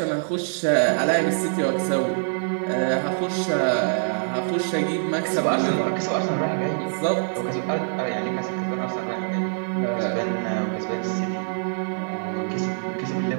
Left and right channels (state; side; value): silent; left; digital silence